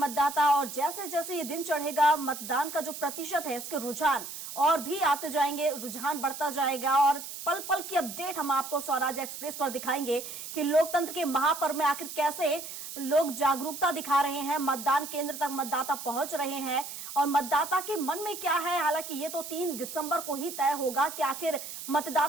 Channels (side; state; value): right; noise; hiss, 9 dB below the sound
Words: और जैसे जैसे ये दिन चढ़ेगा मतदान का जो प्रतिशत है इसके रुझान और भी आते जाएंगे, रुझान बढ़ता जाएगा और पल पल की अपडेट हम आपको स्वराज एक्सप्रेस पर दिखाएंगे कि लोकतंत्र के महापर्व में आखिर कैसे लोग जागरूकता दिखा रहे हैं, मतदान केंद्र तक मतदाता पहुंच रहे हैं और मतदाता के मन में क्या है। हालांकि ये तो 3 दिसंबर को ही तय होगा कि आखिर